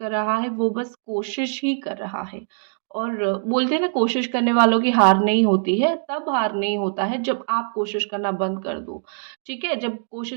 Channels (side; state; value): left; silent; digital silence